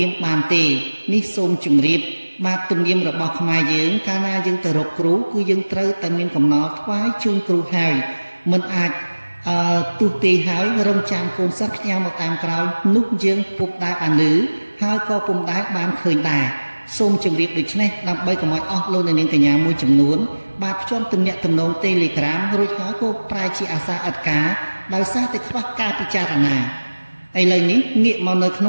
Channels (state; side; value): inverted; both; correlation -1.00